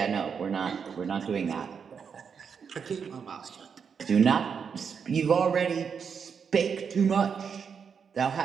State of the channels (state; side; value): quieter; left; 6.5 dB